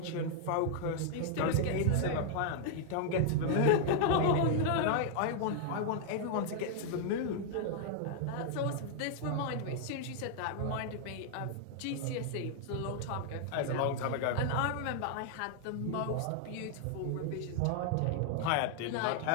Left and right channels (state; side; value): different; both; correlation 0.00